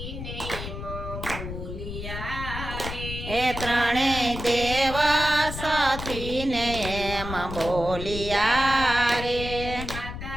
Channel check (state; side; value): noise; left; rumble, 8 dB below the sound